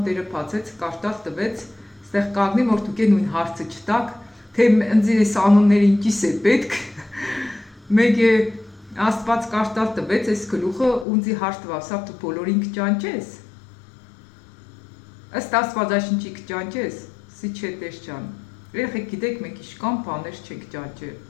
Տերը բացեց, կաշտալ տվեց, ստեղ կանգնի, որ դուք նույն հարցը չտաք, թե ընձի այս անունները ինչիս է պետք, մեկ է Աստված կաշտալ տվեց այս գլուխը ունձի հարց տվավ, սա դու բոլորին կճանչես։ Ըստ Աստվածաշնչի կճանչես, սի չէ տեր ջան։ Երեխեք գիտեք մենք իշքան բաներ չենք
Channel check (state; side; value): drops out; right; at 11.1 s